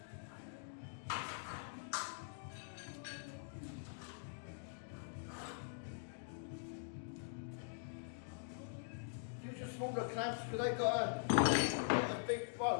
Use your smaller clamps because they've got a big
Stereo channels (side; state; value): right; silent; digital silence